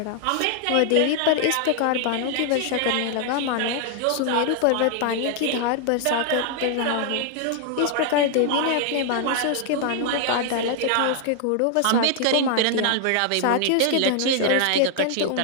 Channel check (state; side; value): different; both; correlation 0.00